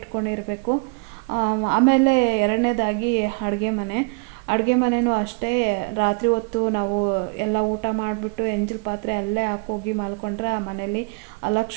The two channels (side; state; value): left; quieter; 32.7 dB